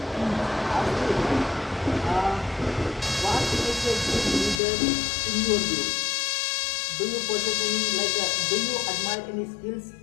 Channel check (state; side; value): drops out; right; at 4.6 s